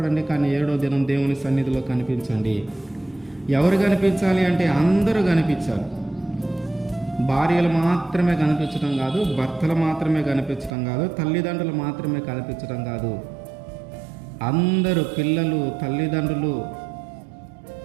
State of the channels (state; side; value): drops out; left; at 10.7 s